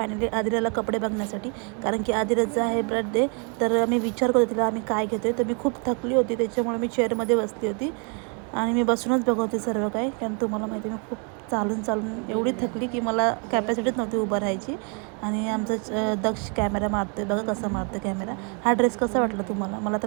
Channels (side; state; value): left; quieter; 38.0 dB